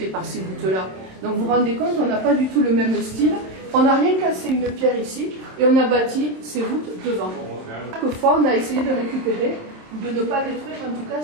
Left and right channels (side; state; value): left; late; 27 ms